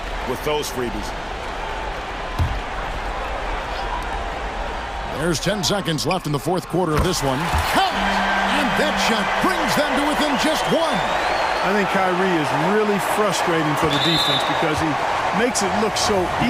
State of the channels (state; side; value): identical; both; correlation 1.00